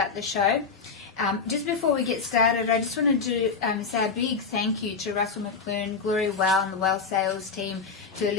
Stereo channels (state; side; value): quieter; right; 5.1 dB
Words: the show. Just before we get started, I just wanted to say a big thank you to Russell McClure, Gloria Well, and the Well Sales team, to